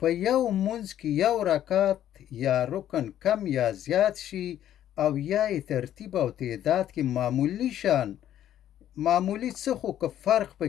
یو مونځ کې یو رکعت یا رکن کم یا زیات شي او یا یې ترتیب او تعداد کې معمولی څه خو که فرق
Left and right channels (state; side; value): quieter; right; 11.4 dB